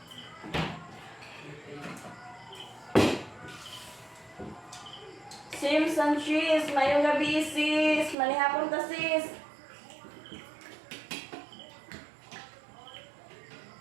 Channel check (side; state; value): left; drops out; at 8.2 s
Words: Simpson cheese, mayong gabi sis. Manihapon ta sis.